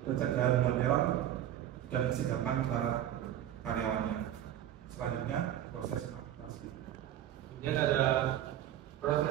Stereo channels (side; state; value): left; quieter; 11.7 dB